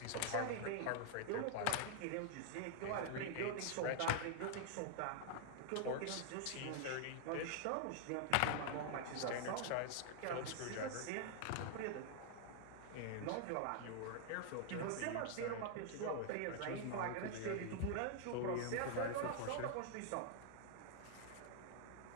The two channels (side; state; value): both; different; correlation 0.00